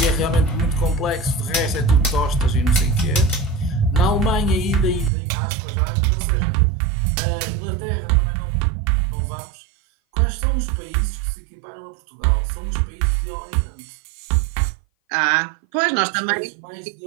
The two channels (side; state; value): left; drops out; at 5.1 s